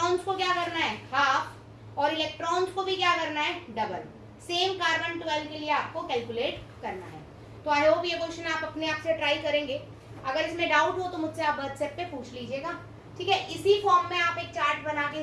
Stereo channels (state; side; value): identical; both; correlation 1.00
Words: को क्या करना है, हाफ, और इलेक्ट्रॉन्स को भी क्या करना है, डबल। सेम कार्बन 12 के लिए आपको कैलकुलेट करना है। तो आई होप ये क्वेश्चन आप अपने आप से ट्राई करेंगे। अगर इसमें डाउट हो तो मुझसे आप व्हाट्सएप पे पूछ लीजिएगा, ठीक है। इसी फॉर्म में आप एक चार्ट बना के